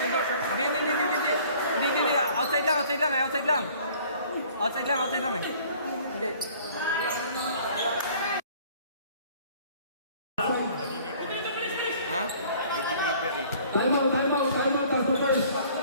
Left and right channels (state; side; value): inverted; both; correlation -0.53